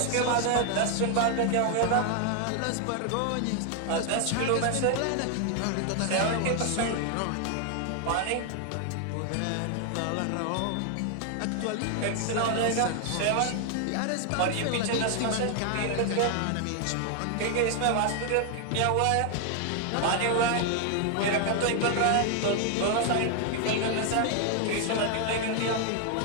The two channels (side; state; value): both; different; correlation 0.00